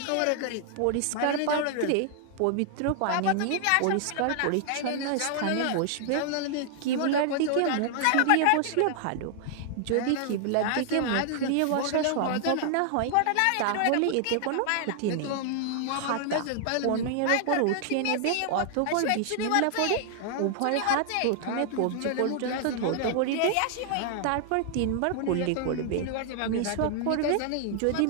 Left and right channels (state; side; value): different; both; correlation 0.00